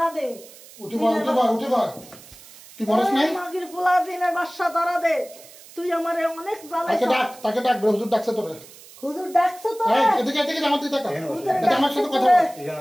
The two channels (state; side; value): noise; right; hiss, 20 dB below the sound